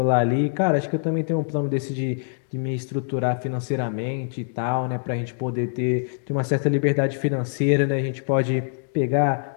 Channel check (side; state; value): right; silent; digital silence